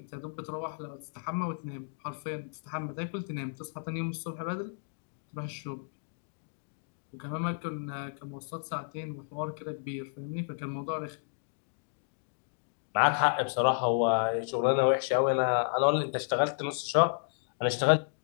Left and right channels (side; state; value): right; silent; digital silence